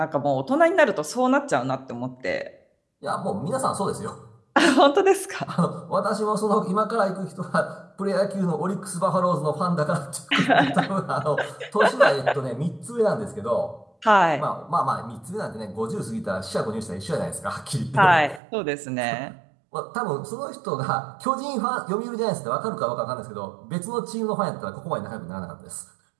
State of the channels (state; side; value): drops out; left; at 18.4 s